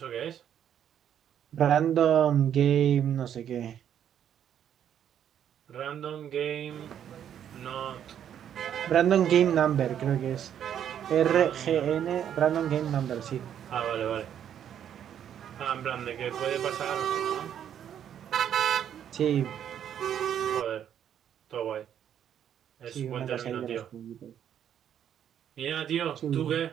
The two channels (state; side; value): quieter; left; 9.5 dB